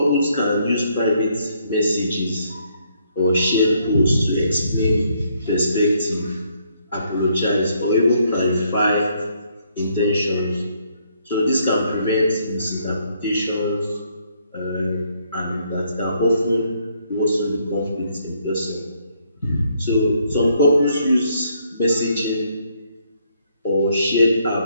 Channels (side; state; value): both; inverted; correlation -0.71